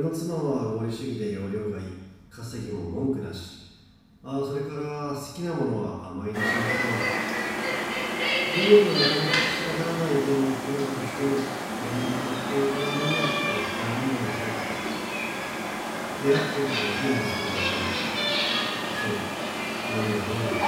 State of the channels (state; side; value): identical; both; correlation 1.00